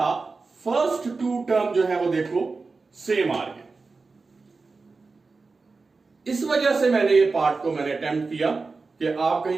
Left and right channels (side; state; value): left; quieter; 4.1 dB